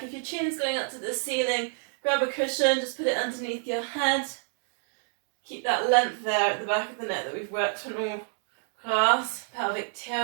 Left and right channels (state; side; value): silent; left; 59 dB below the other